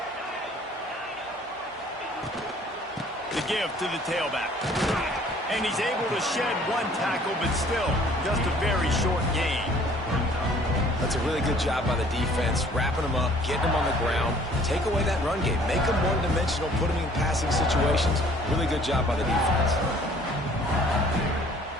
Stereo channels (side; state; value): both; normal; correlation 0.55